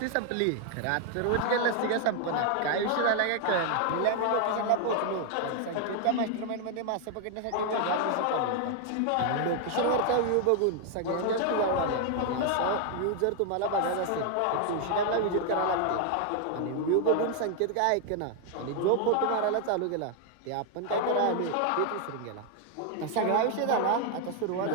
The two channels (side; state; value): both; different; correlation 0.00